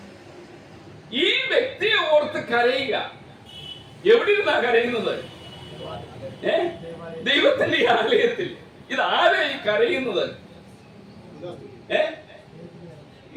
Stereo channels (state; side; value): identical; both; correlation 1.00